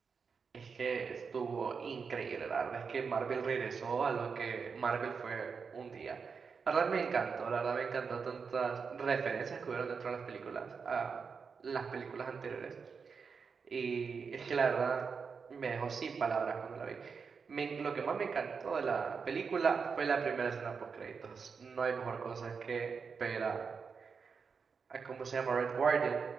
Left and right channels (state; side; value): quieter; left; 5.6 dB